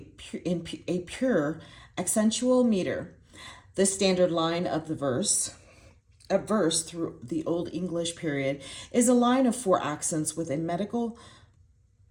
a pure accentual meter. The standard line of the verse through the Old English period is a line of 4 accents with a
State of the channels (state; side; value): identical; both; correlation 1.00